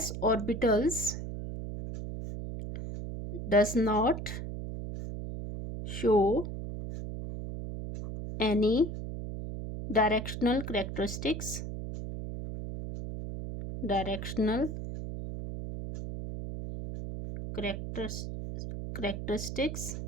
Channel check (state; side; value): noise; right; hum, 6 dB below the sound